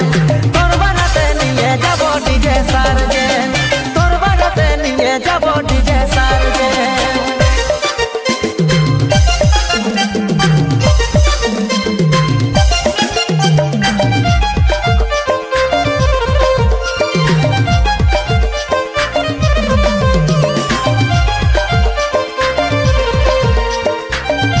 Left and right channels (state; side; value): identical; both; correlation 1.00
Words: তোর বারাতে নিয়ে যাব ডিজে সার্জেন, তোর বারাতে নিয়ে যাব ডিজে সার্জেন।